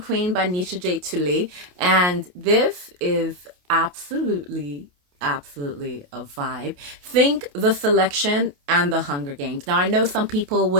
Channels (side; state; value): left; late; 28 ms